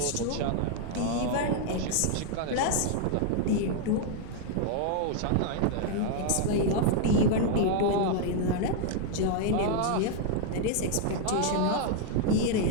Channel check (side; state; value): both; different; correlation 0.00